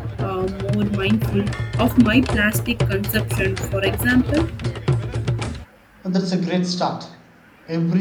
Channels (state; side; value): identical; both; correlation 1.00